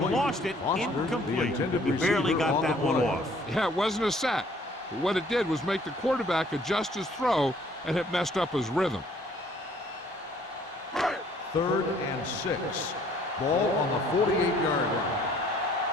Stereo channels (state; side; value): normal; both; correlation 0.59